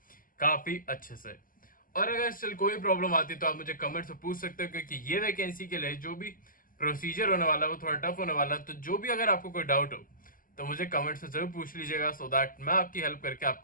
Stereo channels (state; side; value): late; right; 0.41 ms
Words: काफी अच्छे से। और अगर स्टिल कोई प्रॉब्लम आती है तो आप मुझे कमेंट से पूछ सकते हो, क्योंकि ये वैकेंसी के लिए जो भी प्रोसीजर होने वाला है वो थोड़ा टफ होने वाला है। तो जो भी अगर आपको कोई डाउट हो तो मुझे कमेंट से जरूर पूछ लीजिएगा, सो दैट मैं आपकी हेल्प करके